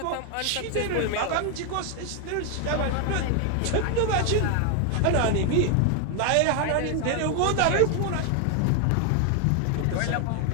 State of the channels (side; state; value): both; different; correlation 0.00